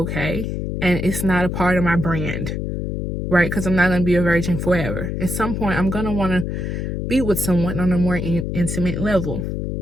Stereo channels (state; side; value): noise; left; hum, 3 dB below the sound